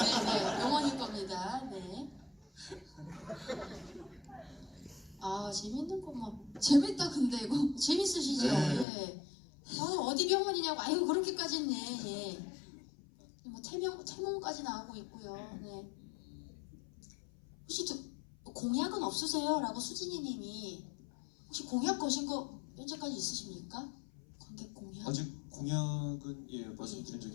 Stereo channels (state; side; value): drops out; right; at 8.8 s